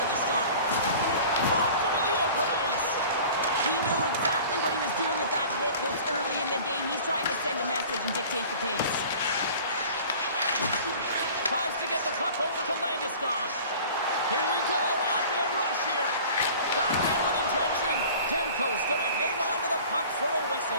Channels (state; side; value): inverted; both; correlation -0.43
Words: the start. Blocked him in the open ice. He knew exactly what he was doing with that hit this early in the game. He's trying to send a message and dictate the pace. Tries to get the puck over to Landeskog. Here we go, on-man rush here. Back in with intention. Demko's gonna hang on to the puck for a